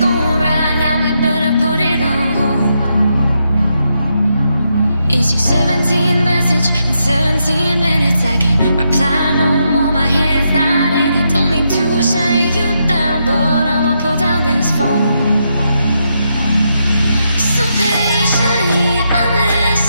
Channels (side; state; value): both; inverted; correlation -0.81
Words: right now, we better put it on hold. Is your 17 message in 17 minutes? I can reply no more, my head's not in it. Don't mean to shut you down, but I'ma put down this phone. So patiently, I'm